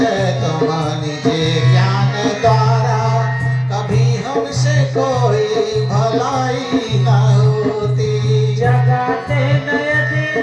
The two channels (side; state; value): both; identical; correlation 1.00